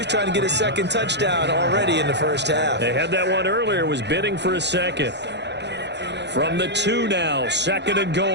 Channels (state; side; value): late; left; 0.50 ms